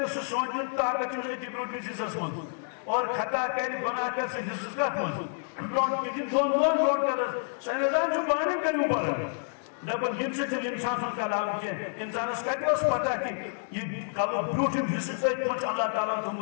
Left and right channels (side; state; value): right; silent; digital silence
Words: سوچن طاقت چھو ایتی برونڈ میں سے سسمن اور خطا کر گناہ کر سے حصص کا من برونڈ کی دون برونڈ کر سائنسدان چھو بانے کریوں پر دپن یم سے انسان سن کلام کی انسان اس کہتے اس پتہ کہ یہ کلو بروٹم حصہ سے پچ اللہ تعالیٰ